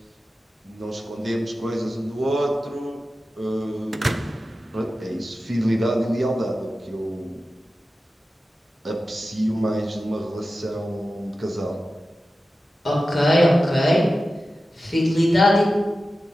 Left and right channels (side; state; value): both; normal; correlation 0.94